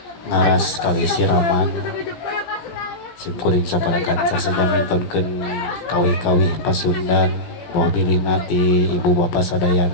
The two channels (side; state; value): right; late; 17 ms